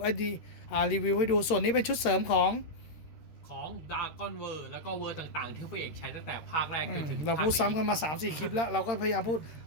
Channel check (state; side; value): late; right; 13 ms